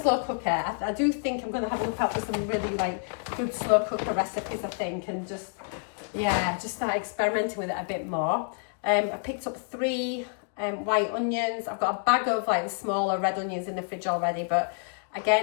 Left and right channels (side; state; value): right; silent; 59 dB below the other